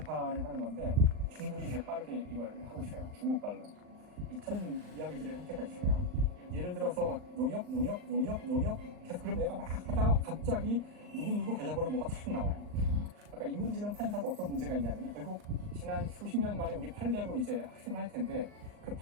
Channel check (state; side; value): late; left; 39 ms